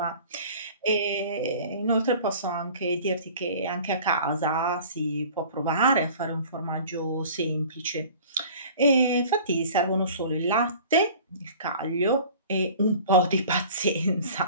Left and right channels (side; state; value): both; inverted; correlation -0.45